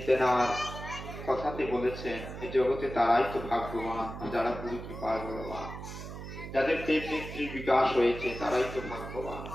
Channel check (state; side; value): noise; right; hum, 10 dB below the sound